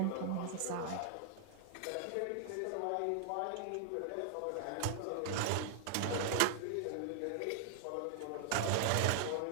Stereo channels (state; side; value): different; both; correlation 0.00